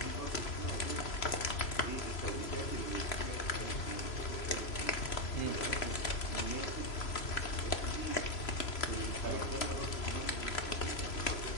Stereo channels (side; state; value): right; late; 3.0 ms